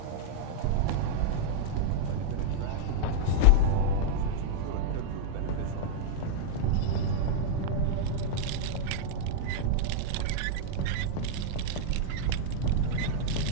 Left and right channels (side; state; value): both; different; correlation -0.01